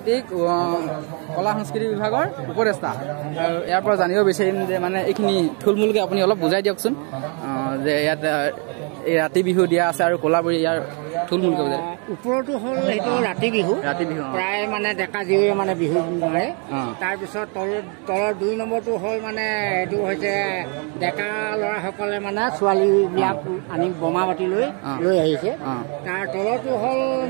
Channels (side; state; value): left; quieter; 36.4 dB